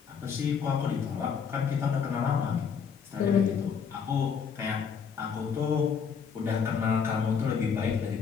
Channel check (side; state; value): right; quieter; 6.6 dB